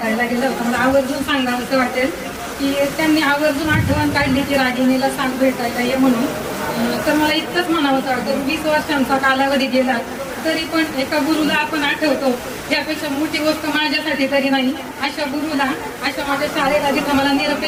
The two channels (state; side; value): identical; both; correlation 1.00